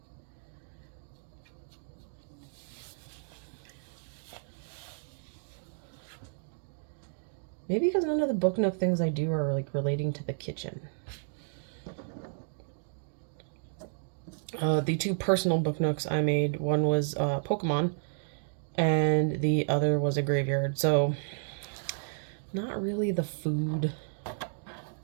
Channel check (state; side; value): silent; left; digital silence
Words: Maybe because none of the book nook things I do are like relating to the kitchen. The two personal book nooks I made, one was Pokemon, and the other was a graveyard. So not really the food